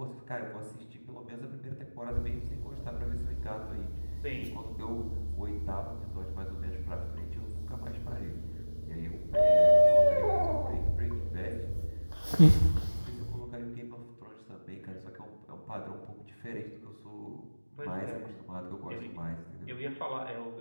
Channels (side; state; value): both; inverted; correlation -1.00